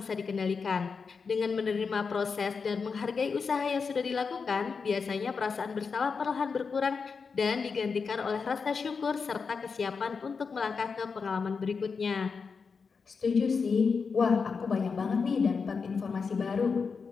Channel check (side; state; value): right; quieter; 5.3 dB